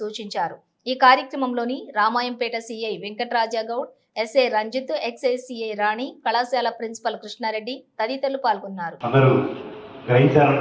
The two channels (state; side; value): identical; both; correlation 1.00